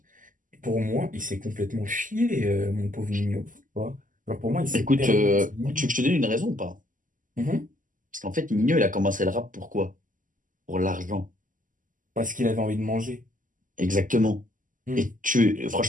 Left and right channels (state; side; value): late; left; 0.38 ms